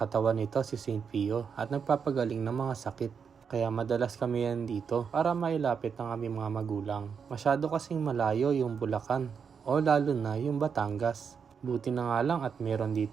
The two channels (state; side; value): quieter; left; 6.5 dB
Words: nito si St. Pio at nagpapagaling ng mga sakit. Kaya madalas kami yan dito para mailapit ng aming mga magulang. Masyado kasing malayo yung Bulacan o lalo na yung Batangas. Buti na nga lang at meron